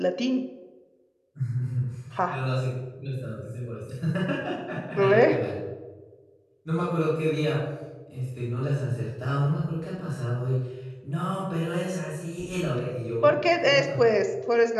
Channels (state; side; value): identical; both; correlation 1.00